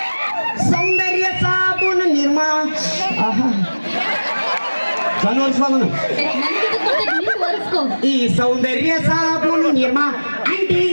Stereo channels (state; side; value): inverted; both; correlation -1.00